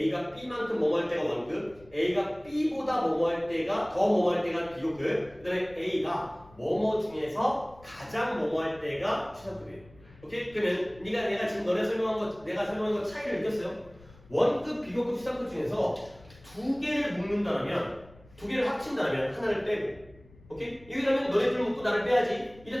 B만큼 뭐뭐 할 때가 원급, A가 B보다 뭐뭐 할 때가 더 뭐뭐 할 때가 비교급, 그 다음에 A가 뭐뭐 중에서 가장 뭐뭐 할 때가 최상급이에요. 오케이? 그러면 내가 지금 내가 설명한 거 차이를 느꼈어요? 원급, 비교급, 최상급 중에서 두 개를 묶는다면, 두 개를 합친다면 하나를 빼고, 오케이? 여기라면 너네들 묶고 나를 빼야지.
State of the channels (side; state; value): left; noise; rumble, 24 dB below the sound